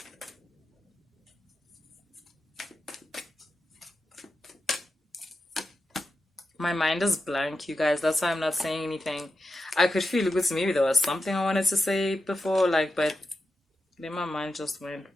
My mind is blank, you guys. That's why I'm not saying anything. I could feel it with maybe there was something I wanted to say before, but then my mind just went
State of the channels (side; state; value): both; normal; correlation 0.90